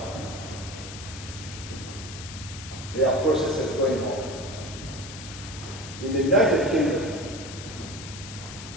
There are processes going on. In the United Kingdom,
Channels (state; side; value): noise; left; hiss, 12 dB below the sound